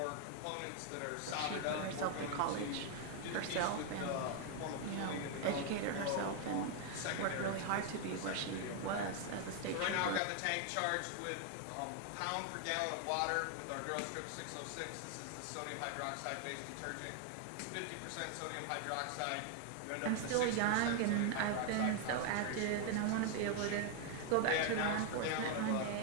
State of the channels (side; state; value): both; different; correlation 0.00